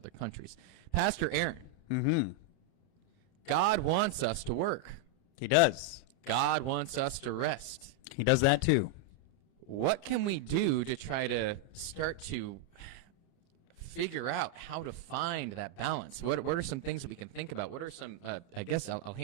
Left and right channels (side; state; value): right; late; 30 ms